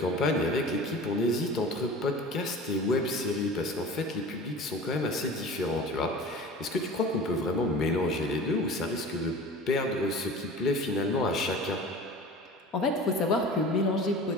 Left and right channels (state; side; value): normal; both; correlation 0.38